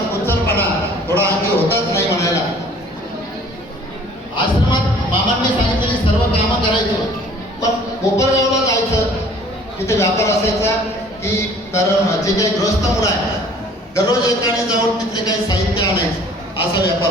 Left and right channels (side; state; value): both; normal; correlation 0.52